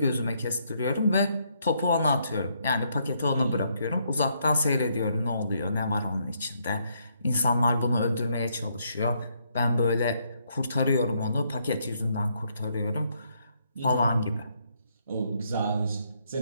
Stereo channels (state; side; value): inverted; both; correlation -0.74